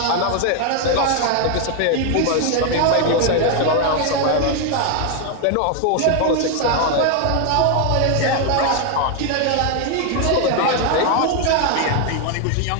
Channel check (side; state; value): both; different; correlation 0.00